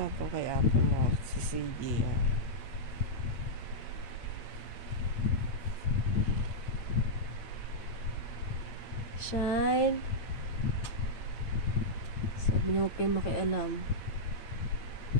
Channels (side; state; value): right; late; 8.8 ms